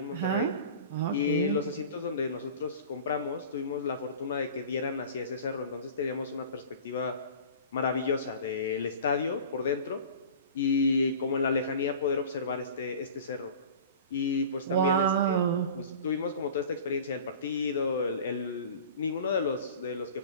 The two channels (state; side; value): inverted; both; correlation -0.39